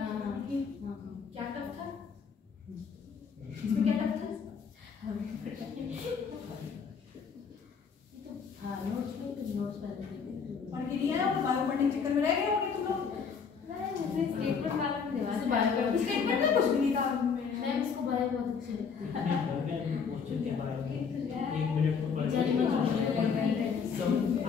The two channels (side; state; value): right; quieter; 6.1 dB